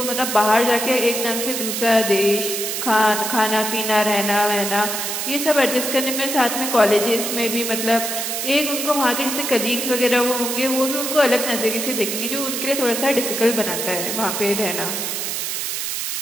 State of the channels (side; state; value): right; noise; hiss, 3 dB below the sound